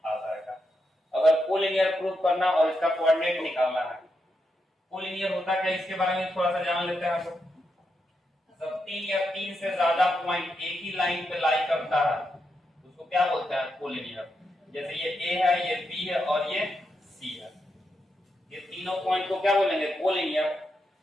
आ जाएगा। अगर कोलिनियर प्रूफ करना और इसका कोऑर्डिनेट निकालना है, कोलिनियर होता क्या, इसके बारे में थोड़ा सा जान लेते हैं हम लोग। जब 3 या 3 से ज्यादा पॉइंट एक ही लाइन पे लाई करता है उसको क्या बोलते हैं, कोलिनियर। जैसे ये A है, ये B है और ये C है, ये तीनों पॉइंट को क्या बोलेंगे, कोलिनियर।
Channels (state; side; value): normal; both; correlation 0.84